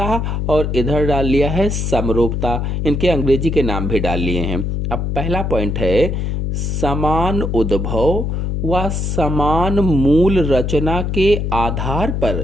और इधर डाल लिया है समरूपता। इनके अंग्रेजी के नाम भी डाल लिए हैं। अब पहला पॉइंट है समान उद्भव व समान मूल रचना के आधार पर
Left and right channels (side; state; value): left; noise; hum, 1 dB below the sound